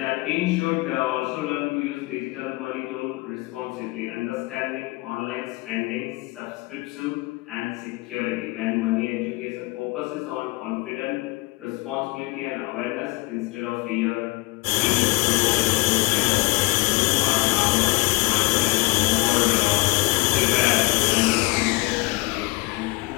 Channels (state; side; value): quieter; right; 23.0 dB